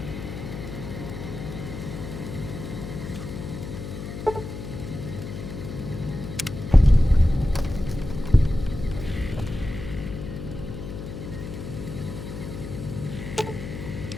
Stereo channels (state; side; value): noise; left; hum, 8 dB below the sound